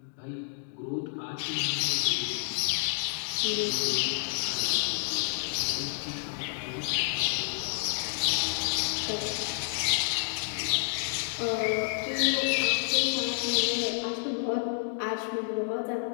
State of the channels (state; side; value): silent; right; digital silence